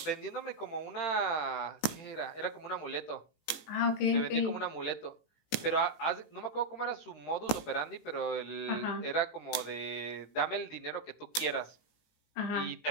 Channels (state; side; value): late; right; 18 ms